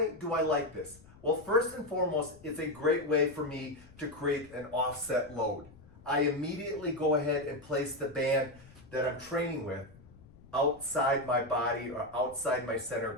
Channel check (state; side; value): noise; left; rumble, 23 dB below the sound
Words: do I like this? Well, first and foremost, it's a great way for me to create an offset load. I immediately go ahead and place the band that I'm training with outside my body or outside my center of